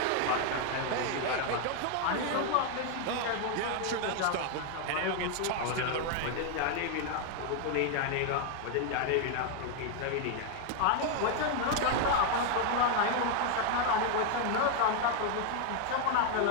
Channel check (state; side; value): different; both; correlation 0.01